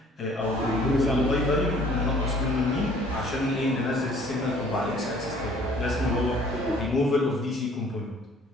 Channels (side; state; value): both; normal; correlation 0.55